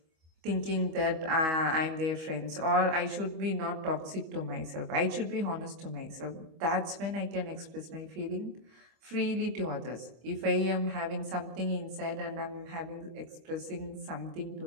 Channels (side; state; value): left; late; 25 ms